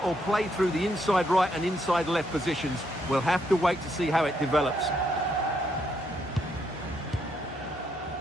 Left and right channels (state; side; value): normal; both; correlation 0.75